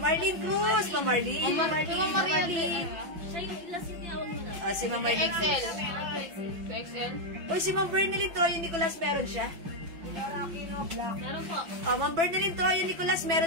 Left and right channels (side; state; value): left; late; 6.0 ms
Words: Arlene Cruz, Ma'am Arlene. Ma'am Maria Teresa. Si Ma'am Arlene Cruz. XL. 2XL. O, si Ma'am Bernalyn Troyo Nicolas, meron siya? Aquino, Black. Meron po. Ma'am Bernalyn Troyo Nicolas,